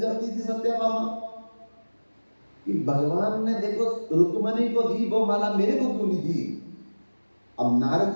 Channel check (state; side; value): inverted; both; correlation -1.00